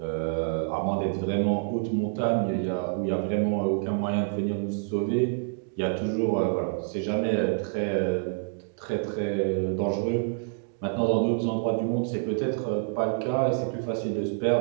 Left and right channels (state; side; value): silent; left; 60 dB below the other